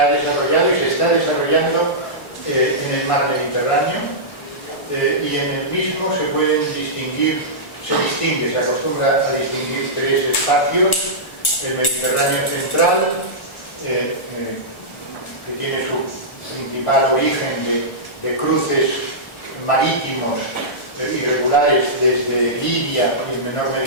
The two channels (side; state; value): right; late; 1.6 ms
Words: desarrollado y se está desarrollando en el mar Mediterráneo, y en el mismo se pueden distinguir, se acostumbra a distinguir tres espacios: el Mediterráneo central, que tiene su principal origen de cruces marítimos irregulares desde Libia y en menor